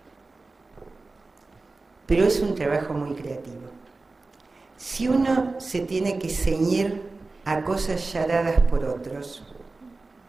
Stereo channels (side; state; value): left; quieter; 3.5 dB